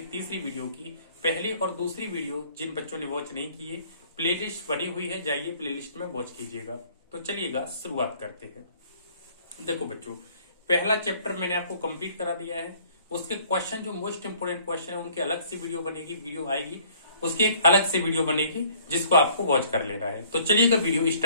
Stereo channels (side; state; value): both; inverted; correlation -0.58